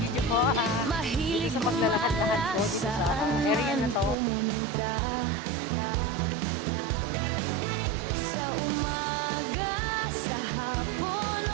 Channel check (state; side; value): drops out; left; at 4.2 s